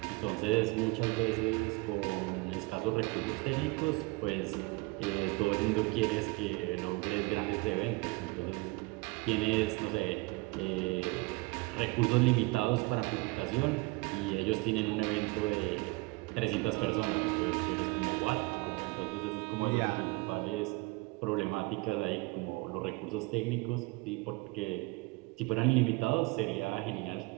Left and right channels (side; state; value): left; quieter; 25.3 dB